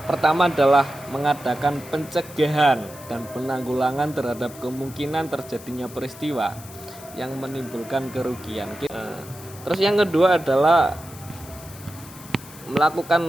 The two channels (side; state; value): left; noise; hiss, 18 dB below the sound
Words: pertama adalah mengadakan pencegahan dan penanggulangan terhadap kemungkinan terjadinya peristiwa yang menimbulkan kerugian. Terus yang kedua adalah